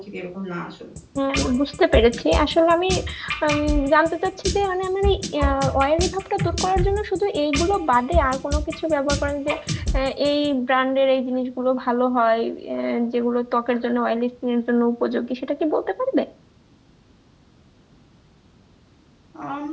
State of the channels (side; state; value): both; identical; correlation 1.00